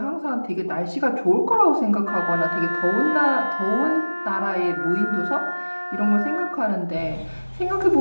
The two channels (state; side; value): inverted; both; correlation -1.00